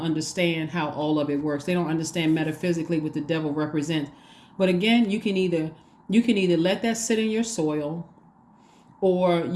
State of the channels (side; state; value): both; identical; correlation 1.00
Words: understand how all of it works. They don't understand metaphysically what the devil represents. But again, you can either let that sit in your soil, or